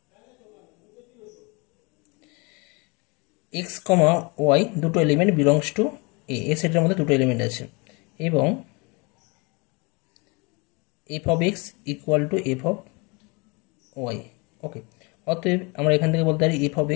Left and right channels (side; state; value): right; quieter; 29.1 dB